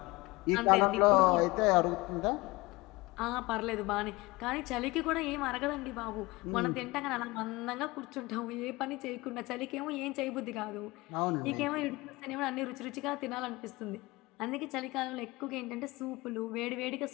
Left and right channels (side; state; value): right; quieter; 22.3 dB